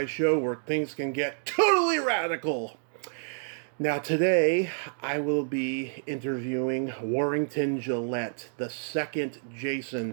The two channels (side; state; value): left; silent; digital silence